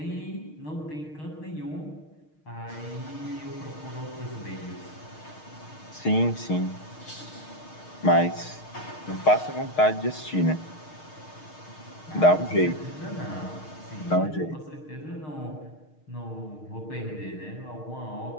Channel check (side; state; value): right; late; 6.5 ms